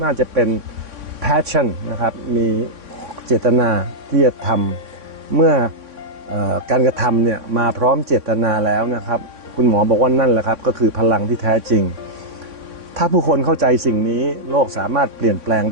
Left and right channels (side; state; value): left; late; 3.6 ms